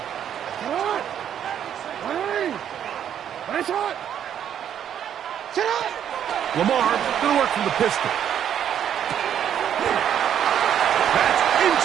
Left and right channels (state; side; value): quieter; left; 9.5 dB